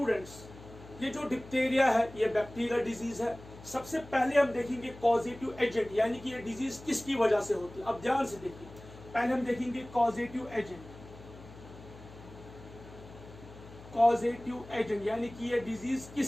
ये जो डिप्थेरिया है ये बैक्टीरियल डिजीज है। सबसे पहले हम देखेंगे कॉजेटिव एजेंट, यानी कि ये डिजीज किसकी वजह से होती है। अब ध्यान से देखिए, पहले हम देखेंगे कॉजेटिव एजेंट। कॉजेटिव एजेंट यानी कि ये डिजीज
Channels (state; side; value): noise; left; hum, 18 dB below the sound